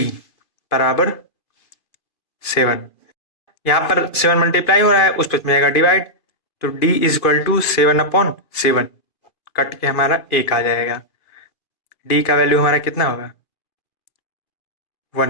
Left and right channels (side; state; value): right; late; 2.5 ms